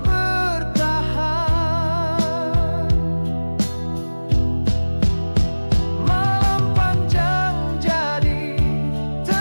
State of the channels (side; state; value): both; inverted; correlation -1.00